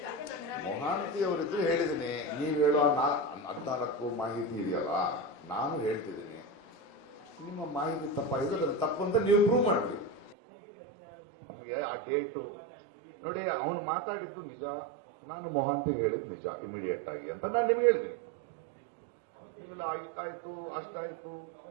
ಮೊಹಾಂತಿ ಅವರಿದ್ರು ಹೇಳಿದ್ದೀನಿ. ನೀವು ಹೇಳೋ 14 ಮಾಹಿತಿ ಇದೆಯಲ್ಲ, ನಾನು ಹೇಳ್ತಿದ್ದೀನಿ. ನಿಮ್ಮ ಮಾಹಿತಿ ತಪ್ಪಾಗಿದೆ, ಅದು ತಪ್ಪು ಅಂತ ನೀವು ಪ್ರೂವ್ ಮಾಡ್ತೀವಿ. ನಿಮಗೆ ಆ ಡೇಟು ನೋಡಿ, ಅವನು ಮಾತಾಡಿದ್ದು ನಿಜ, ನಾನು ಮೊಹಾಂತಿಗೆ ಹೇಳಿದ್ದು ನಿಜ ಇಮಿಡಿಯೇಟ್ ಆಗಿ ಅಂತ ನಾನು ನಿಮ್ಗೆ ಹೇಳ್ತೀನಿ. ಇಲ್ಲ ಇಷ್ಟಾಯ್ತು ಅಷ್ಟಾಯ್ತು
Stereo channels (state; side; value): drops out; left; at 10.4 s